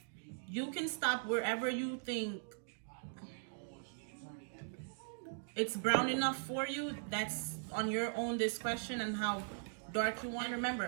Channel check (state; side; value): silent; left; digital silence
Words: You can stop wherever you think it's brown enough for you. That's on your own discretion and how dark you want.